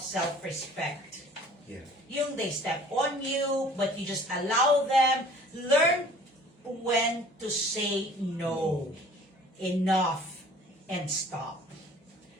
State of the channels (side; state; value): both; normal; correlation 0.50